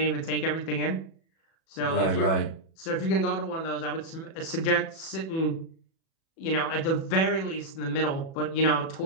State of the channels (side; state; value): right; late; 37 ms